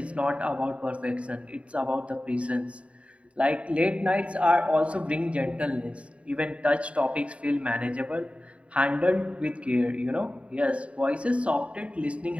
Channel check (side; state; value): left; late; 0.063 ms